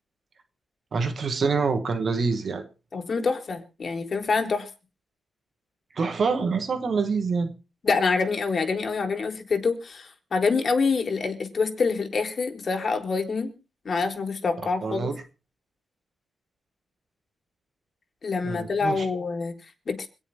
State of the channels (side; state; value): both; normal; correlation 0.84